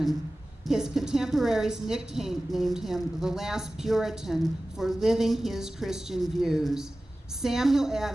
His contemporaries nicknamed him the last Puritan for living his Christian views. Samuel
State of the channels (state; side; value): normal; both; correlation 0.96